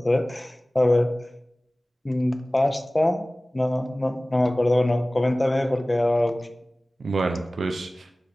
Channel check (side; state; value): both; normal; correlation 0.98